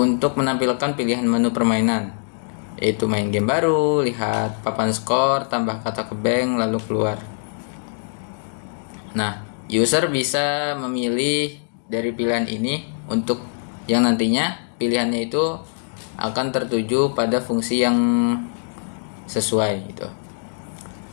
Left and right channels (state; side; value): silent; right; digital silence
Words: menampilkan pilihan menu permainan, yaitu main game baru, lihat papan skor, tambah kata ke bank, lalu keluar. Nah, user bisa memilih dari pilihan ini untuk yang nantinya pilihannya itu akan tertuju pada fungsi yang sesuai gitu.